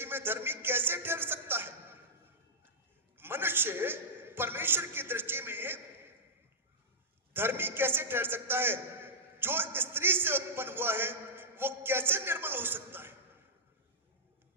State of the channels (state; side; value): normal; both; correlation -0.10